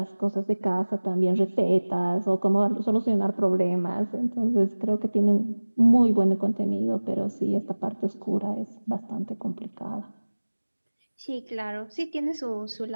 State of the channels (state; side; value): inverted; both; correlation -1.00